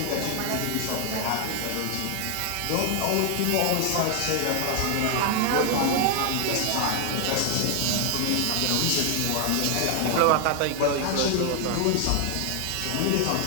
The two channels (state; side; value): different; both; correlation 0.00